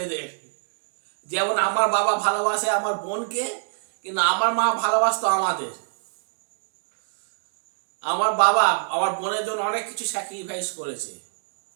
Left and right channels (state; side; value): silent; left; digital silence